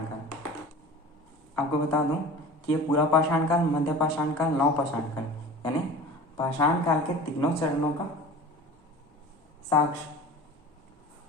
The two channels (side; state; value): both; normal; correlation 0.38